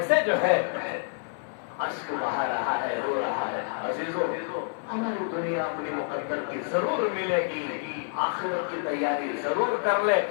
جو ہے اشک بہا رہا ہے، رو رہا ہے۔ عزیزو ہماری دنیا اپنی مقدر کی ضرور ملے گی، آخرت کی تیاری ضرور کر لے،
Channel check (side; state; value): right; silent; 59 dB below the other